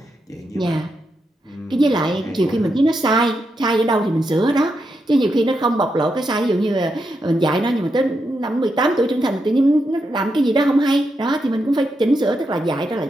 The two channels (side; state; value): both; normal; correlation 0.84